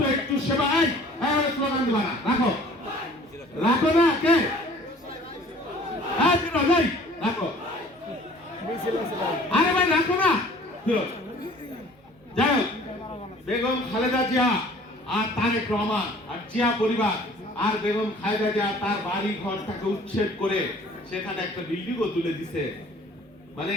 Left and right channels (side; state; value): both; normal; correlation 0.51